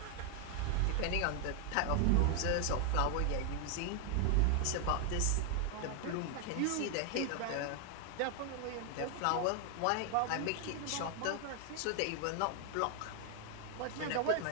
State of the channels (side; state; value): both; different; correlation 0.00